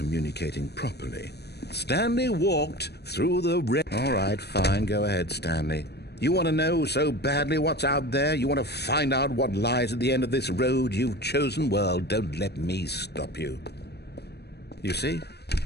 properly. Stanley walked through the red... All right, fine, go ahead, Stanley. You want to know so badly what's out there? You want to find out what lies at the end of this road you've chosen? Well, don't let me stop you. You see,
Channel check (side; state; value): right; late; 0.48 ms